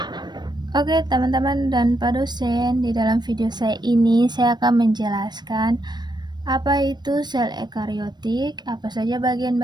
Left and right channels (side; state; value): left; late; 0.21 ms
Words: Oke teman-teman dan Pak dosen, di dalam video saya ini saya akan menjelaskan apa itu sel ekariotik, apa saja